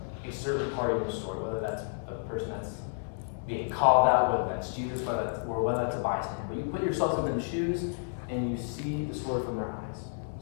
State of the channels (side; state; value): right; silent; digital silence